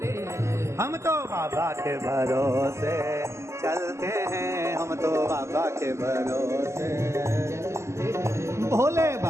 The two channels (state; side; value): late; left; 0.13 ms